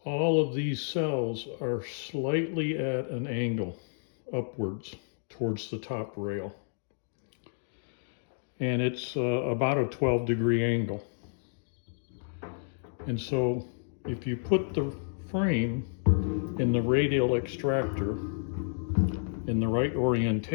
all of these cells are slightly at an angle upwards towards the top rail. And it's about a 12-degree angle. And so if you put the frame in the radial extractor in the right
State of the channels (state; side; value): silent; right; digital silence